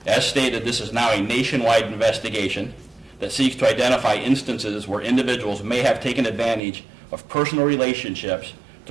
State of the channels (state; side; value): drops out; left; at 6.6 s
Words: As stated, this is now a nationwide investigation that seeks to identify instances where individuals may have taken advantage of personal relationships